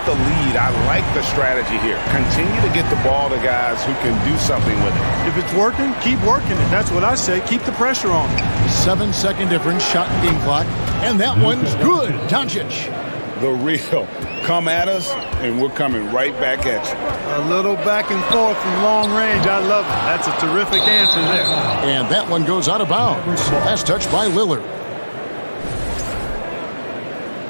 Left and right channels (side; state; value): both; inverted; correlation -1.00